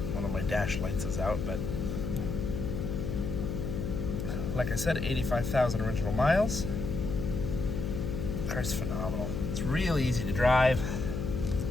one of my dash lights is out, but like I said, 85,000 original miles. The car's phenomenal. It's really easy to drive.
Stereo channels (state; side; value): noise; left; hum, 3 dB below the sound